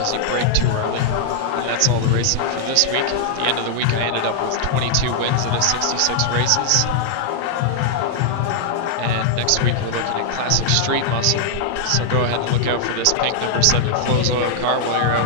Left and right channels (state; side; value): different; both; correlation -0.01